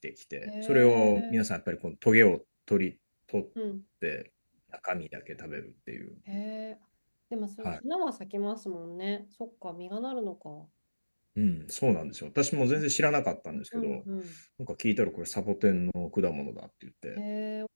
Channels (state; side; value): inverted; both; correlation -1.00